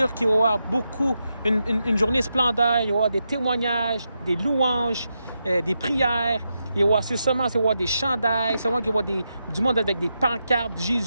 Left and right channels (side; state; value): both; inverted; correlation -0.86